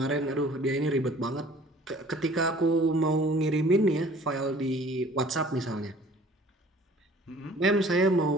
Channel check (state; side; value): normal; both; correlation 0.51